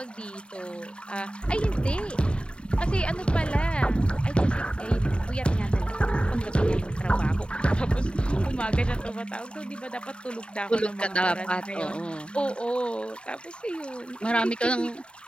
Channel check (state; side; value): late; right; 0.053 ms